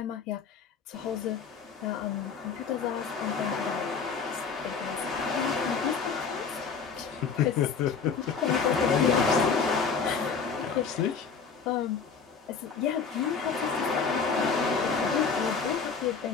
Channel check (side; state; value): right; quieter; 5.7 dB